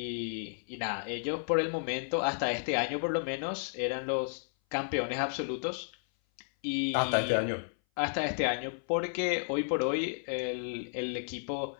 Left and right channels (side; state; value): right; silent; 56 dB below the other